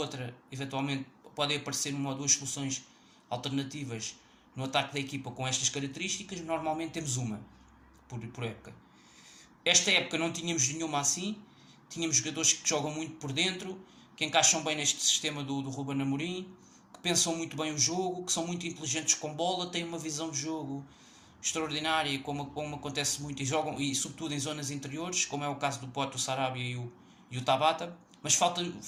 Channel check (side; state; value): both; identical; correlation 1.00